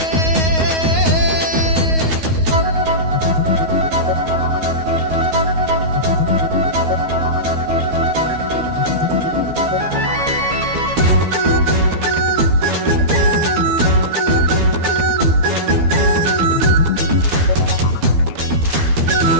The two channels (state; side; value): late; left; 12 ms